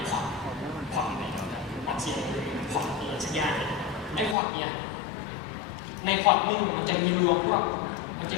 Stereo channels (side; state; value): right; drops out; at 4.4 s